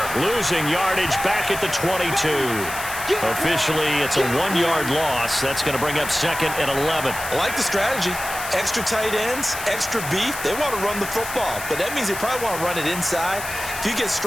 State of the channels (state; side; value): noise; left; hiss, 9 dB below the sound